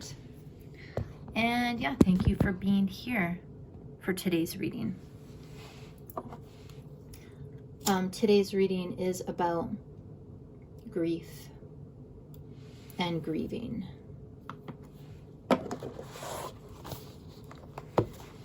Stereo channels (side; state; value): both; identical; correlation 1.00